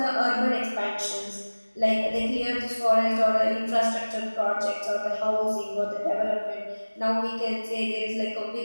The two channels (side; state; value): both; inverted; correlation -1.00